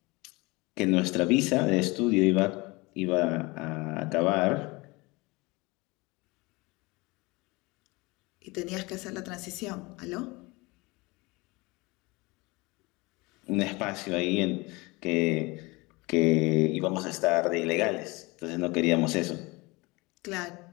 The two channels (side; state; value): right; quieter; 24.3 dB